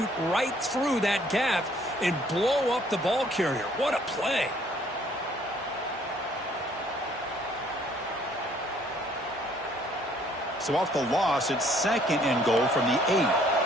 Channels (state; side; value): normal; both; correlation 0.62